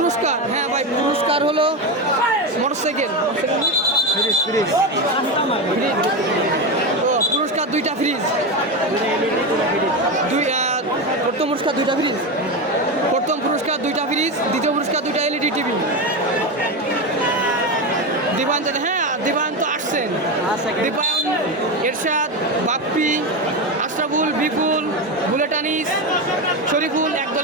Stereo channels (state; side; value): normal; both; correlation 0.15